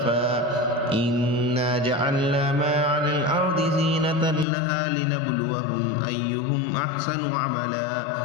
إنا جعلنا ما على الأرض زينة لها لنبلوهم أيهم أحسن عملا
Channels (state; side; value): drops out; right; at 4.5 s